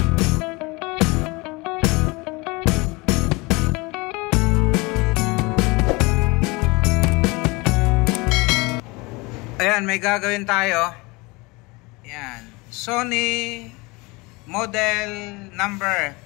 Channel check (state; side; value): quieter; right; 25.3 dB